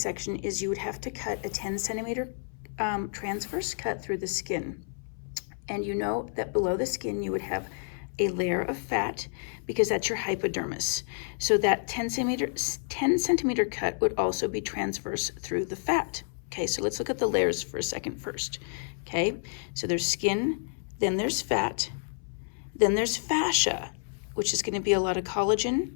is you would have to cut a 10 centimeter transverse cut through the skin. And you know that below the skin you would have a layer of fat because that's your hypodermis. So that 10 centimeter cut would also be transverse through the fat. Okay, so let's look at the layers for a second first. Okay, so there's skin, then there's fat, then there's fascia, which is going to be a lot of collagen,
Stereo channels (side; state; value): right; silent; 58 dB below the other